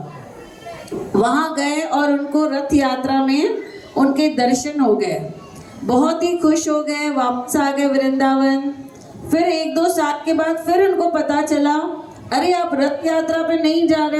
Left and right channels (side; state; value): both; identical; correlation 1.00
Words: वहां गए और उनको रथ यात्रा में उनके दर्शन हो गए, बहुत ही खुश हो गए, वापस आ गए वृंदावन। फिर 1-2 साल के बाद फिर उनको पता चला, अरे आप रथ यात्रा पे नहीं जा रहे